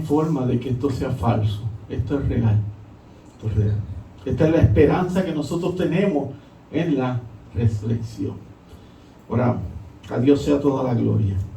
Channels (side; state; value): both; identical; correlation 1.00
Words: forma de que esto sea falso. Esto es real. Esto es real. Esta es la esperanza que nosotros tenemos en la resurrección. Oramos. A Dios sea toda la gloria.